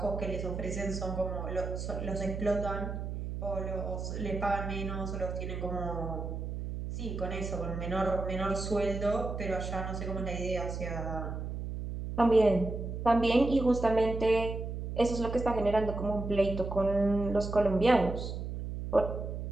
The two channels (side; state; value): right; noise; hum, 5 dB below the sound